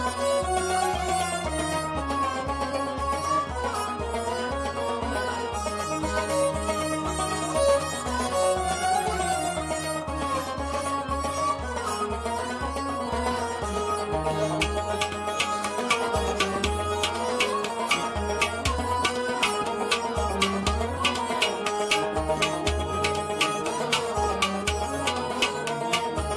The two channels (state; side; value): identical; both; correlation 1.00